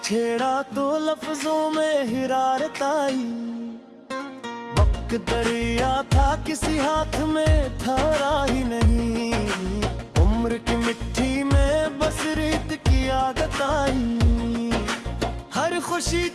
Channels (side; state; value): both; identical; correlation 1.00